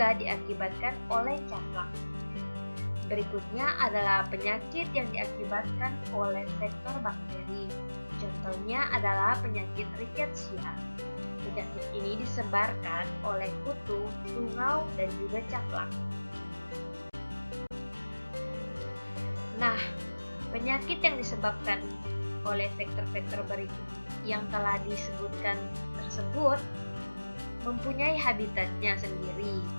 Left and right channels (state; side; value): inverted; both; correlation -1.00